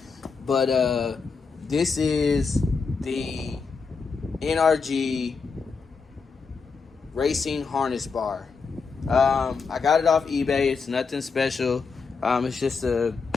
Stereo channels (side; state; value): right; quieter; 5.0 dB